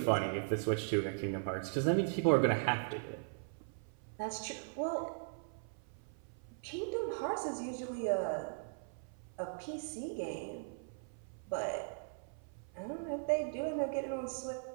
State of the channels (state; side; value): silent; left; 52 dB below the other